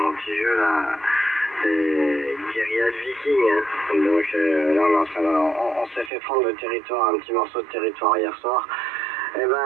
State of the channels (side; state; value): left; drops out; at 6.1 s